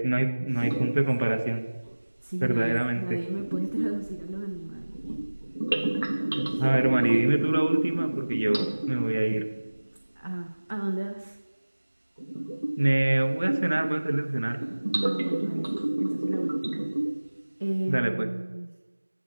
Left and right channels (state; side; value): inverted; both; correlation -1.00